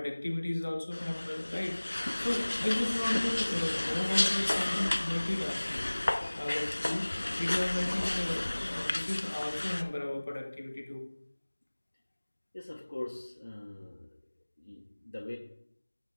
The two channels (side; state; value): both; inverted; correlation -1.00